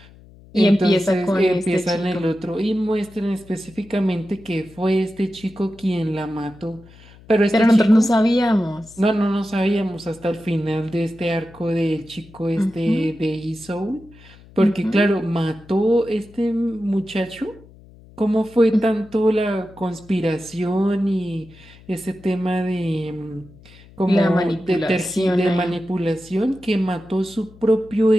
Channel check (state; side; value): noise; left; hum, 23 dB below the sound